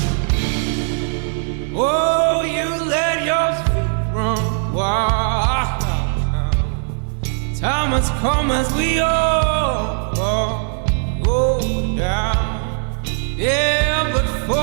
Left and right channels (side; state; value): left; silent; digital silence